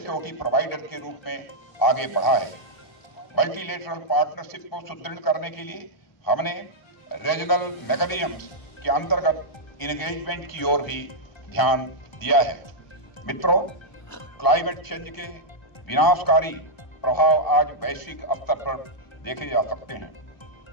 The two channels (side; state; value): right; late; 1.0 ms